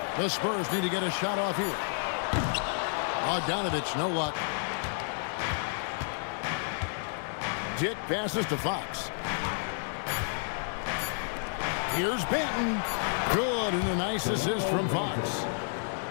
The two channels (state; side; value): silent; right; digital silence